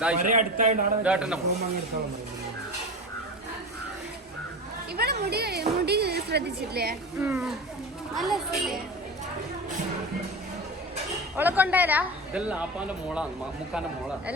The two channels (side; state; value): both; normal; correlation 0.28